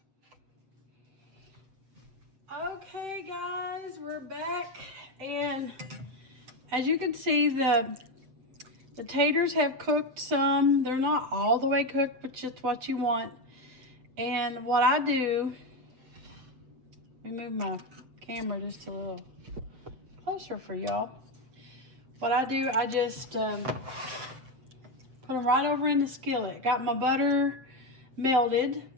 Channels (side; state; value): left; late; 7.9 ms